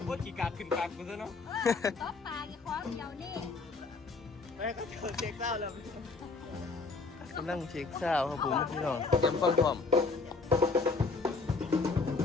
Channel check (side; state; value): right; quieter; 4.1 dB